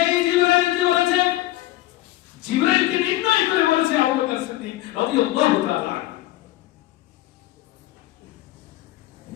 জিবরাইল যে বলেছে, জিবরাইলকে নির্ণয় করে বলেছে আবু বকর সিদ্দিক রাদিয়াল্লাহু তাআলা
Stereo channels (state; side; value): quieter; right; 16.5 dB